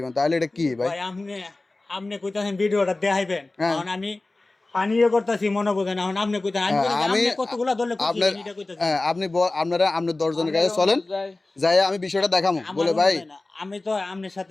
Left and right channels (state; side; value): quieter; right; 3.1 dB